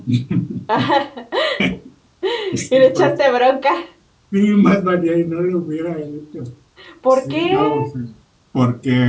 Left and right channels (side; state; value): both; identical; correlation 1.00